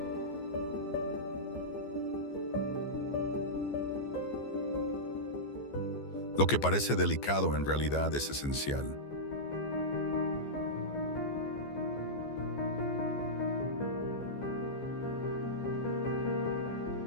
Lo que parece delicado en realidad es esencial.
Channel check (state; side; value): late; right; 14 ms